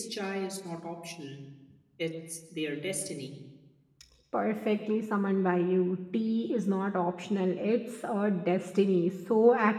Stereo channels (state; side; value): identical; both; correlation 1.00